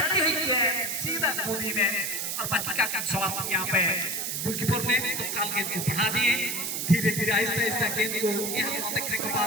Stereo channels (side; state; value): right; noise; hiss, 2 dB below the sound